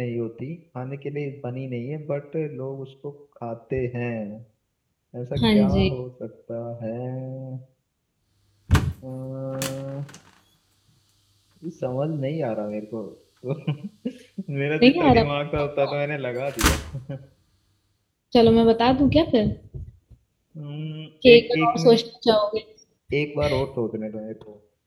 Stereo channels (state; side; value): identical; both; correlation 1.00